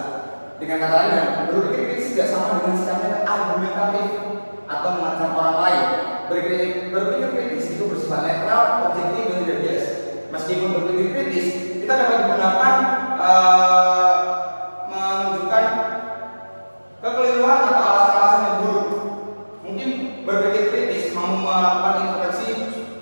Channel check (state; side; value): inverted; both; correlation -1.00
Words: Dengan kata lain, berpikir kritis tidak sama dengan sikapnya argumentatif atau mengecam orang lain. Berpikir kritis itu bersifat netral, objektif dan tidak bias. Meskipun berpikir kritis, kita dapat menggunakan menunjukkan kekeliruan atau alasan-alasan yang buruk. Mungkin berpikir kritis mau melakukan introspeksi